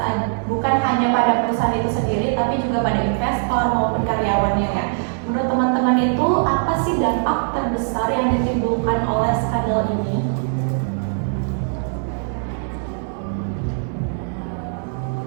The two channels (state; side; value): silent; left; digital silence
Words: bukan hanya pada perusahaan itu sendiri, tapi juga pada investor maupun karyawannya ya. Menurut teman-teman itu apa sih dampak terbesar yang ditimbulkan oleh skandal ini?